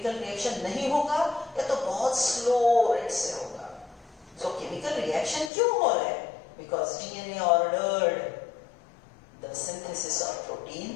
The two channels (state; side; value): drops out; right; at 5.5 s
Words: रिएक्शन नहीं होगा या तो बहुत स्लो रेट से होगा. सो केमिकल रिएक्शन क्यों हो रहा है? Because DNA ordered the synthesis of